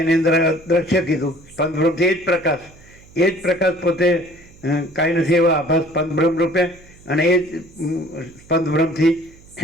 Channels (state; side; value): noise; right; hum, 25 dB below the sound